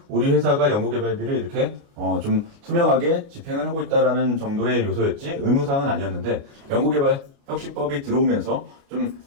우리 회사가 연구개발비를 이렇게 좀 투명하게 집행을 하고 있다라는 정도의 요소였지 의무사항은 아니었는데 연구개발 혁신법이 들어오면서 좀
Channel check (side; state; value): left; late; 29 ms